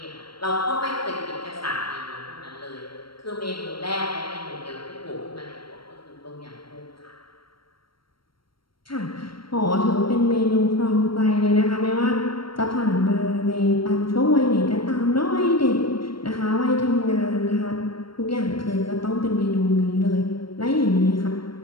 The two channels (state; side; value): late; right; 0.74 ms